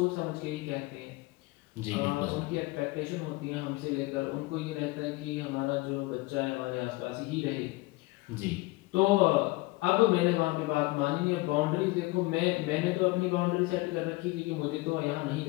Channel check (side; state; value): right; quieter; 21.8 dB